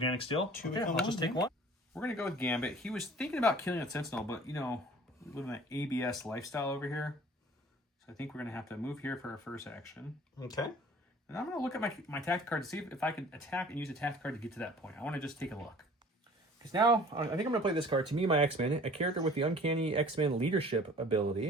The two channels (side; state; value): both; normal; correlation 0.49